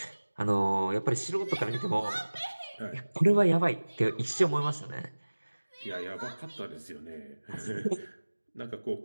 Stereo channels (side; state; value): both; inverted; correlation -1.00